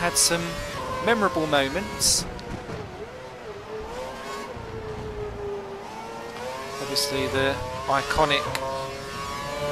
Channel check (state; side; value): identical; both; correlation 1.00